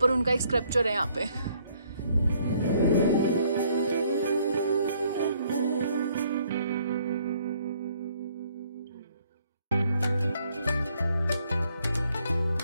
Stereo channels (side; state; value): both; inverted; correlation -0.66